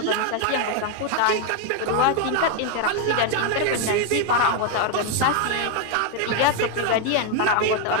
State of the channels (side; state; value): both; different; correlation 0.01